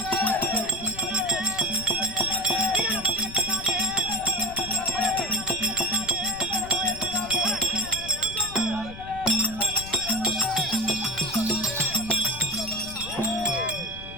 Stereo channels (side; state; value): left; noise; rumble, 14 dB below the sound